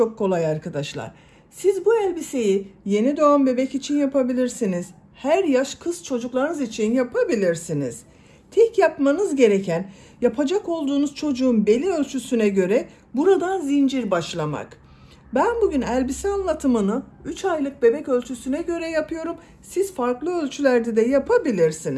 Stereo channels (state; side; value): identical; both; correlation 1.00